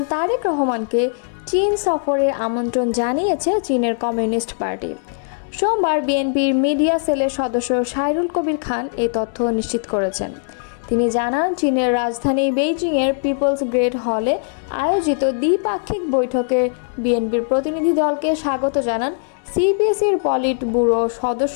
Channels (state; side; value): silent; right; 65 dB below the other